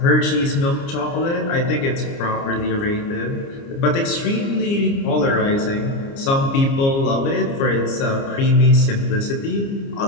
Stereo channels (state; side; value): late; right; 29 ms